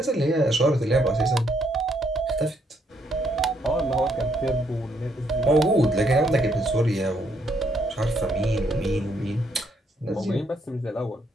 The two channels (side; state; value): both; normal; correlation 0.72